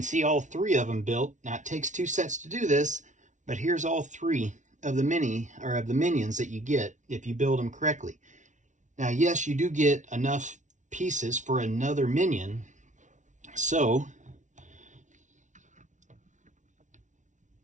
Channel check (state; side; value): late; left; 0.36 ms